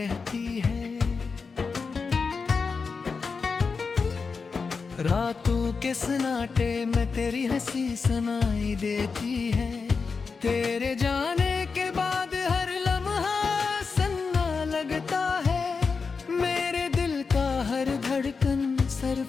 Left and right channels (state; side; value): quieter; right; 4.9 dB